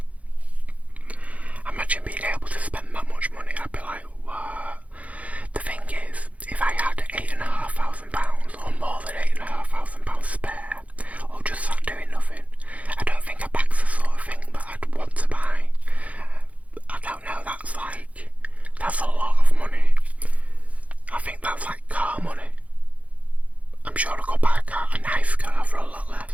Imagine being able to spend that much money. I'd be like, what? The thing is, if I had £8,500 or more than £8,500 spare, or just sat doing nothing, I don't think a bag's the sort of thing that I'd want to buy. I don't know, that's a lot of money. I think that's like car money. I'm sure I could buy a nice car for a lot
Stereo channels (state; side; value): late; left; 0.067 ms